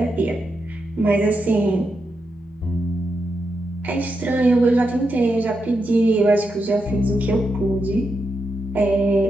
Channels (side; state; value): both; normal; correlation 0.85